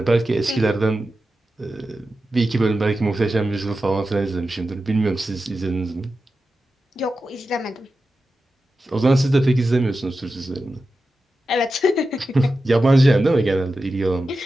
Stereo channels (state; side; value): normal; both; correlation 0.92